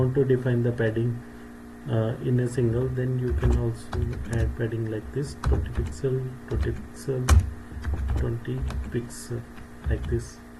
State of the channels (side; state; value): both; identical; correlation 1.00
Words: to define the padding in a single, then you can also add padding like this: 20 pixel, 20 pixel, 20 pixel, like this,